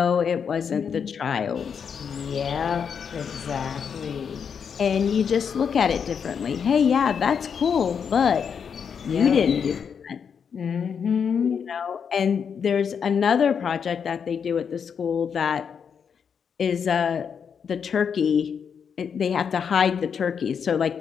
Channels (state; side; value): quieter; right; 6.9 dB